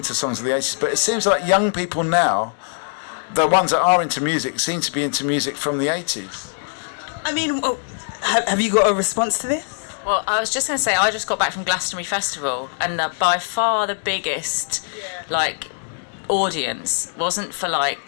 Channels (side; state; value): right; silent; digital silence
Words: songs of the 80s, but it seems like young people now, the ones that are into music, seem to be into music from the 80s. I mean, have you got a response to this? Well, I was just going to say, I just got back from Glastonbury Festival, and by far the biggest, audience wasn't for